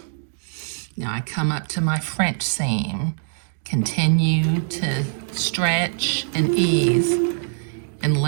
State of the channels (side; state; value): left; silent; digital silence